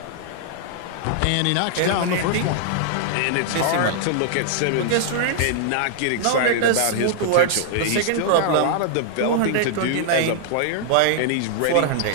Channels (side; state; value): both; different; correlation -0.01